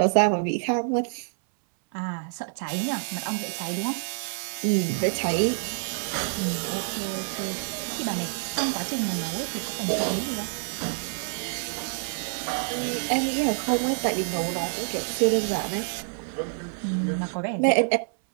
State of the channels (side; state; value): left; silent; 60 dB below the other